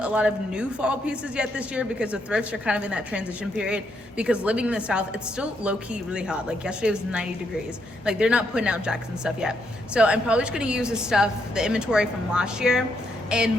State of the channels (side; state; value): both; normal; correlation 0.77